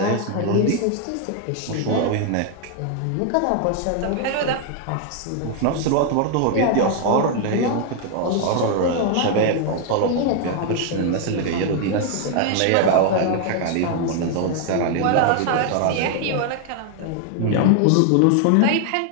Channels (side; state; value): both; different; correlation 0.00